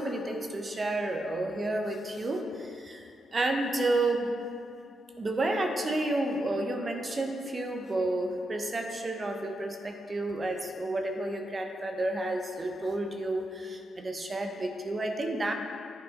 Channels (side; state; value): both; normal; correlation 0.85